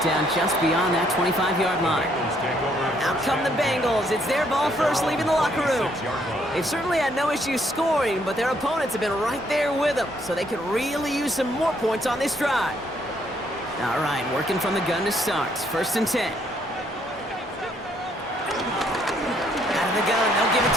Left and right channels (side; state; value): both; normal; correlation 0.69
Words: down just beyond that 25-yard line. Out come the Bengals. It's their ball first, leaving the locker room. They've certainly had no issues scoring, but their opponents have been right there with them, so they could really use some more points on this drive. All right, working from the gun to start. 1st and 10. Out of the gun, they'll give it